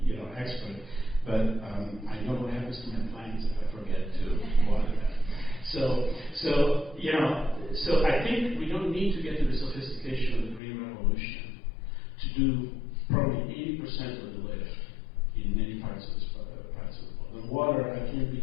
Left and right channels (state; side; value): drops out; right; at 10.6 s